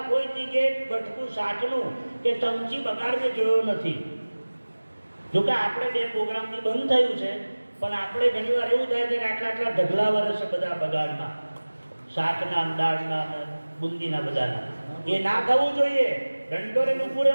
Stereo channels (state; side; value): inverted; both; correlation -1.00